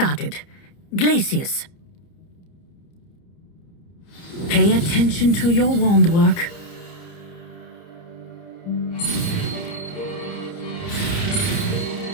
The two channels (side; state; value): right; late; 30 ms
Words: Glacius. Pay attention to your wand work.